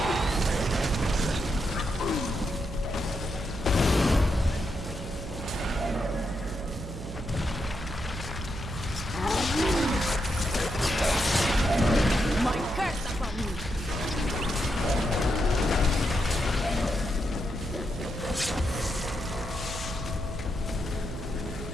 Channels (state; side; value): noise; right; hum, 9 dB below the sound